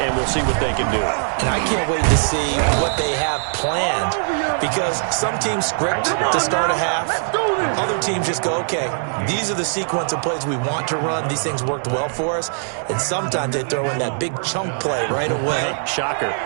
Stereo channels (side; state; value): left; silent; 65 dB below the other